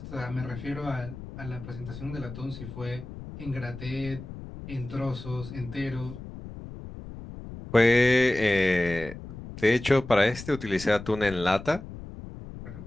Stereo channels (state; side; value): noise; left; rumble, 12 dB below the sound